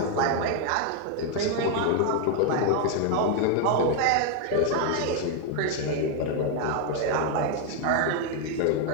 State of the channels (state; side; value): different; both; correlation 0.01